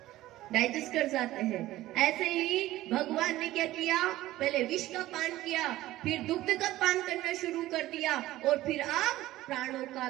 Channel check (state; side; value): quieter; left; 15.8 dB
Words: डाइजेस्ट कर जाते हैं। ऐसे ही भगवान ने क्या किया, पहले विष का पान किया, फिर दुग्ध का पान करना शुरू कर दिया, और फिर अब प्राणों का